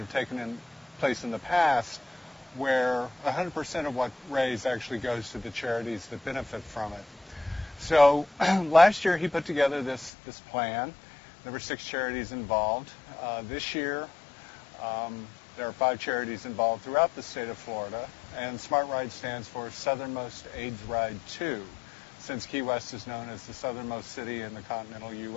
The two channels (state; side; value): drops out; right; at 10.1 s